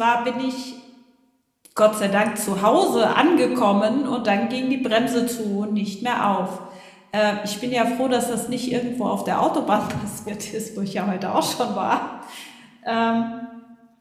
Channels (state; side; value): identical; both; correlation 1.00